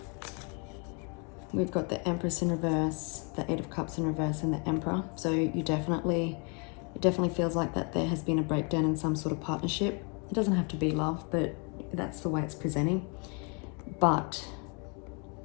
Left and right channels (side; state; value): right; quieter; 34.9 dB